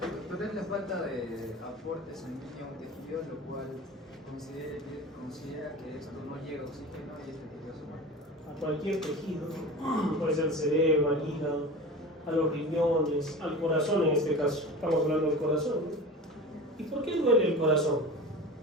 Pero es la falta de aporte sanguíneo a un tejido, lo cual considera que esto no llega oxígeno y este tejido se muere. A cualquier tejido, puede ser el cerebro, al hígado, a los riñones, al corazón en este caso. Estamos hablando del corazón, ¿no? ¿Y por qué duele el corazón?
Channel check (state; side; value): normal; both; correlation 0.33